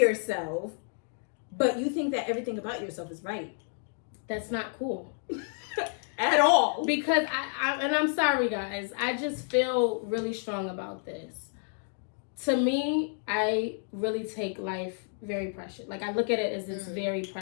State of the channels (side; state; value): right; silent; 58 dB below the other